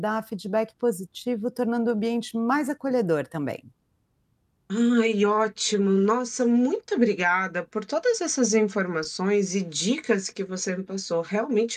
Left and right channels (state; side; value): identical; both; correlation 1.00